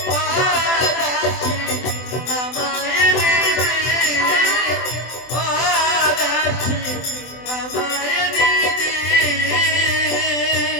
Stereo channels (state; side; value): late; right; 24 ms